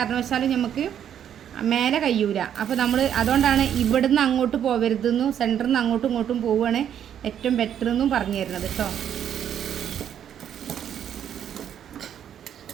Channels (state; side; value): quieter; left; 9.5 dB